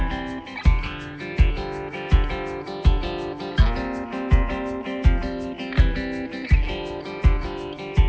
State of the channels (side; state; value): both; identical; correlation 1.00